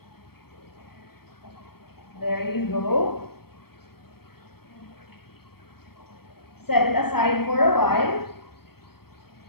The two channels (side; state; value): right; late; 0.95 ms